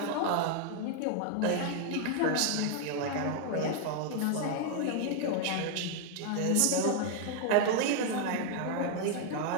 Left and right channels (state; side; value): different; both; correlation 0.00